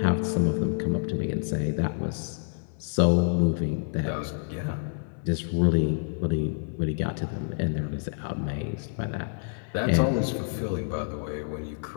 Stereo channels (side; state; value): right; silent; digital silence